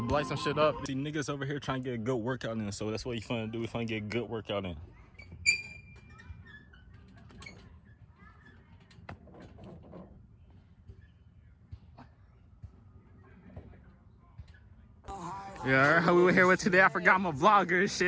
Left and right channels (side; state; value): both; identical; correlation 1.00